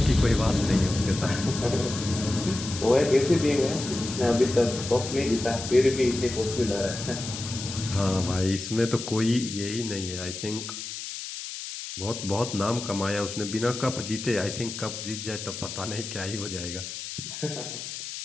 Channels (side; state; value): left; noise; hiss, 8 dB below the sound